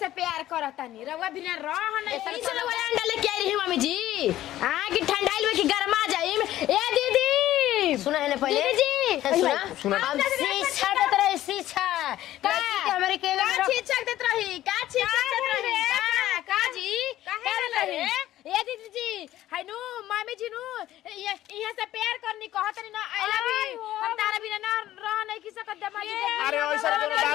प्यार करता नहीं रवा बिना रह नहीं चलो वाला अंडा लेके आई रही मम्मी जी हां कि ठंडाइल में कि गरमा जाई ए दीदी सुना है ना पहले दीदी सुना हम शिक्षा देत रहे शिक्षा लड़की के हमारे के का शिक्षा देत रही का शिक्षा देत रही का जी का रही ए दीदी जी हाय नु मम्मी जी नु यहां से प्यार करनी कहत नहीं ना आई लव यू हम तारा बिना ना रह नहीं की सकत दामाद जी अरे ऐसा कोनो बात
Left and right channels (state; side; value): quieter; right; 13.9 dB